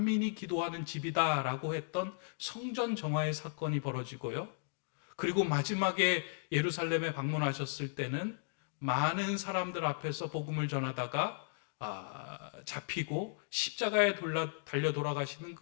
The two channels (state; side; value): silent; right; digital silence